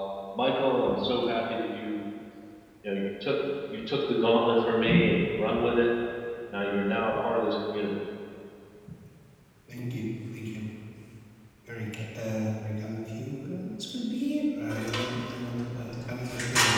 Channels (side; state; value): both; identical; correlation 1.00